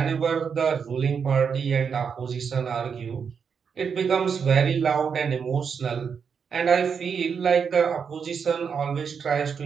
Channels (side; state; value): left; quieter; 6.5 dB